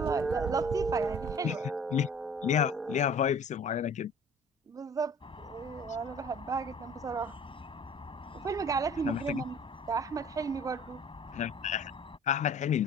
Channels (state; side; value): normal; both; correlation 0.47